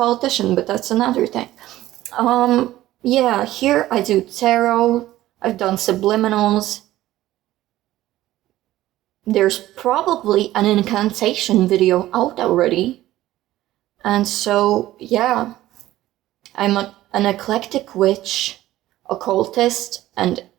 but that's another thing. Yeah, here I do tarot. I've done subliminals. There's probably an incantation video out already. And so, yeah, I'm an eclectic witch, occultist, and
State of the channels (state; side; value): quieter; left; 15.2 dB